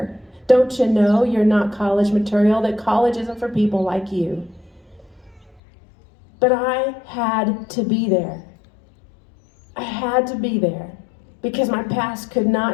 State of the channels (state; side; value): drops out; right; at 5.6 s